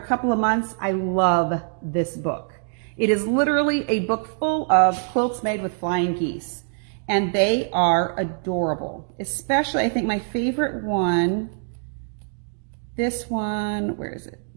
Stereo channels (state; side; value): silent; left; 63 dB below the other